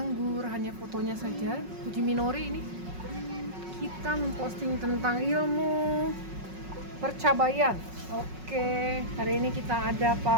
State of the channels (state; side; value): late; left; 5.4 ms